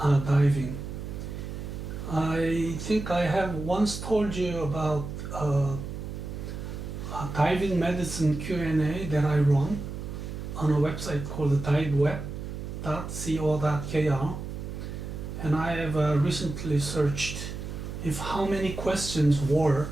diving. I think I have once told you about a diving medicine Q&A that I run on a website called diveweb.co.kr. And I have recently searched if how many questions were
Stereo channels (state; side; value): noise; right; hum, 7 dB below the sound